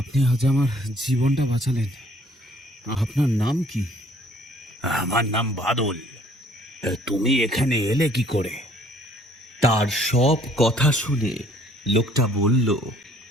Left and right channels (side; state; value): both; normal; correlation 0.59